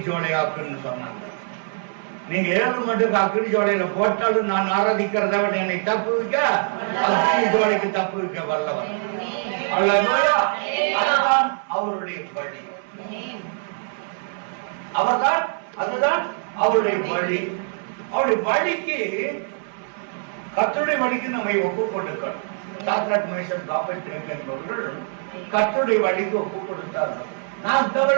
சோலையாக்குன்னு சொன்னாங்க. நீங்க 7 மடங்கு அக்னி சோலையில போட்டாலும் நான் ஆராதிக்கிறத விட என்னை தப்பு வைக்க அக்னி சோலைக்கு தப்பு வைக்க வல்லவன். அதுதான் அவருடைய வழி. அதுதான் அவருடைய வழி. அவருடைய வழிக்கு, கர்த்தருடைய வழிக்கு நம்மை ஒப்பு கொடுக்கணும். சாத்ராக், மேஷாக், ஆபேத்நேகோ என்பவர்கள் கர்த்தருடைய வழிக்கு ஒப்பு கொடுத்தார்கள். நான் இந்த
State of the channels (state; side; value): silent; left; 58 dB below the other